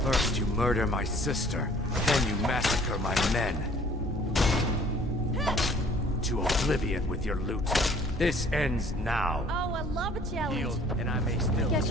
First you murder my sister, then you massacre my men. To oblivion with your loot. This ends now. Oh, I love a challenge. Yield, and I may still Guess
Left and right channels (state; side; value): normal; both; correlation 0.55